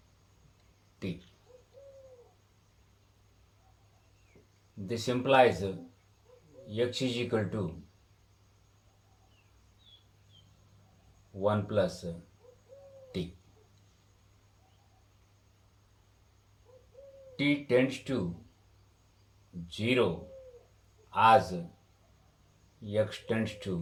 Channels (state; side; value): identical; both; correlation 1.00